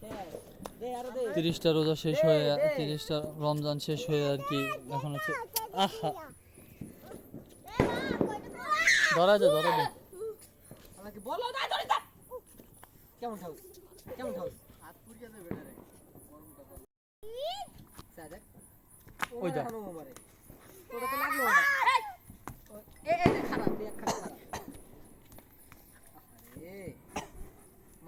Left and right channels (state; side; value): identical; both; correlation 1.00